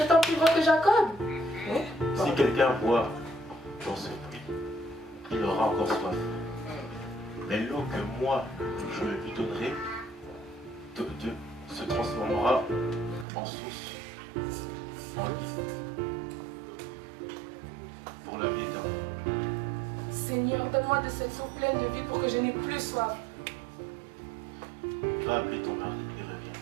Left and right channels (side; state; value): left; drops out; at 13.2 s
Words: plus grand que Jacob? Si quelqu'un boit dans ce puits, il aura encore soif. Mais l'eau que moi, je lui donnerai, se transformera en source, en lit, pour la vie éternelle. Seigneur, donne-moi de cette eau pleine de vie pour que je n'ai plus soif. Va appeler ton mari et reviens.